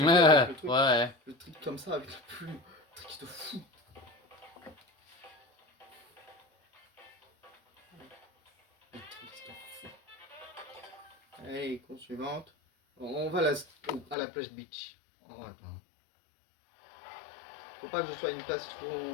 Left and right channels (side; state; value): right; drops out; at 14.2 s